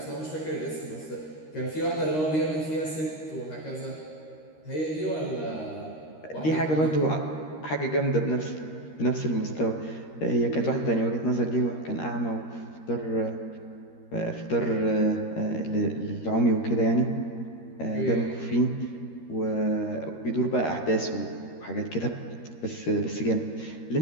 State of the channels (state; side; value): late; right; 13 ms